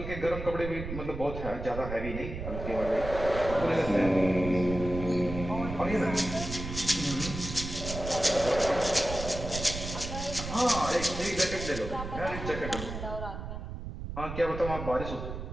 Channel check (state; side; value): noise; right; rumble, 7 dB below the sound